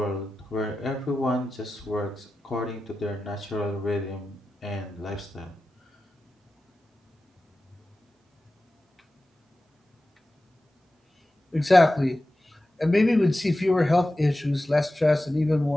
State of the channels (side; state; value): both; normal; correlation 0.94